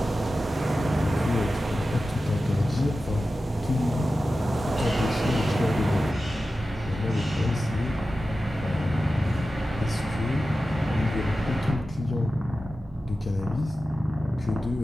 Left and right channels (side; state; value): both; normal; correlation 0.93